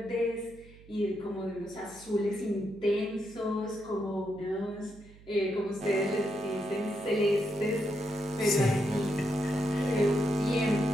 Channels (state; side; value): noise; right; hum, 22 dB below the sound